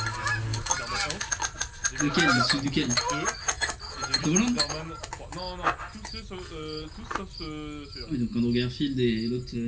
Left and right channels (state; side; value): identical; both; correlation 1.00